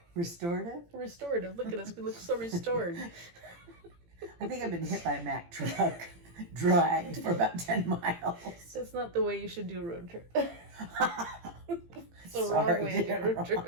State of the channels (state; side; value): late; left; 18 ms